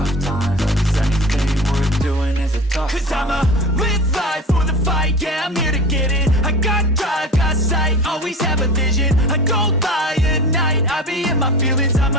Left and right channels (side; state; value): both; normal; correlation 0.34